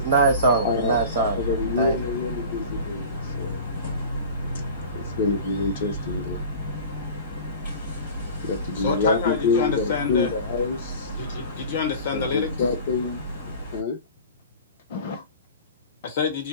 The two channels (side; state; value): both; inverted; correlation -0.38